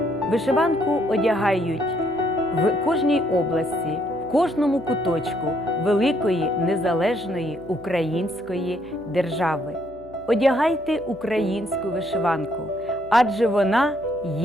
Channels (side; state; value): right; noise; hum, 23 dB below the sound